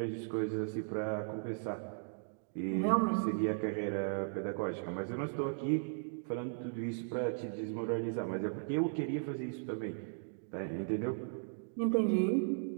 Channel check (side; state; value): left; silent; digital silence